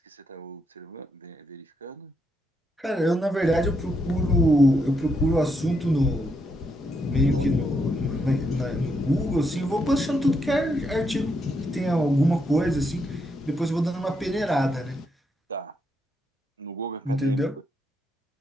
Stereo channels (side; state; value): both; normal; correlation 0.79